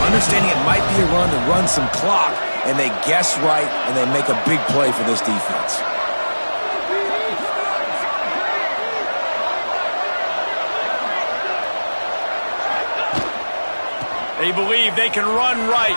understanding it might be a run to run some clock. And they guess right, and they make a big play for this defense. They believe they can run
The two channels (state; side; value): inverted; both; correlation -1.00